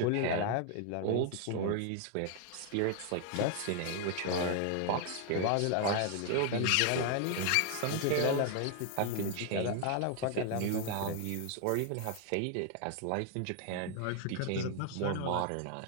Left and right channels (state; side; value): different; both; correlation 0.00